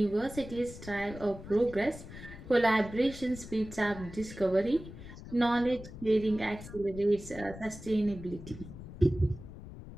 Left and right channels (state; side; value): noise; left; rumble, 14 dB below the sound